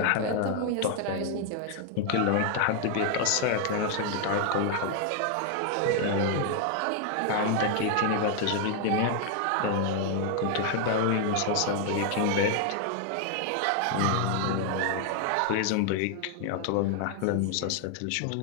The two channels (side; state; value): both; different; correlation 0.00